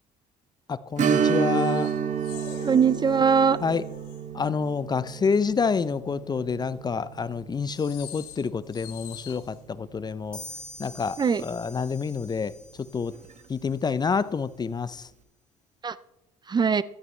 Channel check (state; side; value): normal; both; correlation 0.58